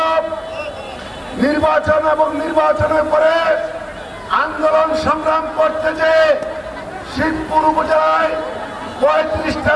নির্বাচন এবং নির্বাচনের পরে আন্দোলন সংগ্রাম করতে যে শিবপুর উপজেলায় 35টা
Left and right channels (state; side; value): identical; both; correlation 1.00